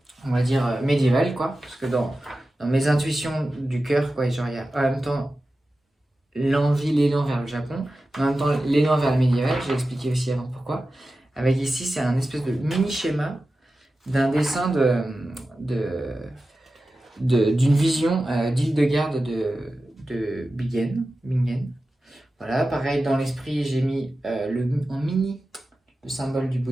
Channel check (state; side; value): normal; both; correlation 0.94